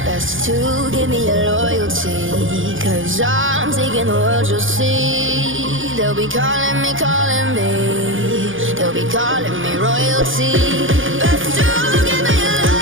Best to give me your loyalty, 'cause I'm taking the world, you'll see. They'll be calling me, calling me. They'll be calling me royalty. Best to give me your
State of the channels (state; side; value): late; left; 0.58 ms